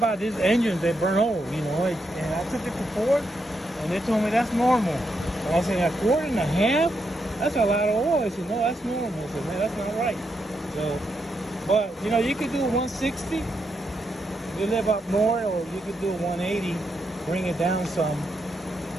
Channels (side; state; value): both; normal; correlation 0.82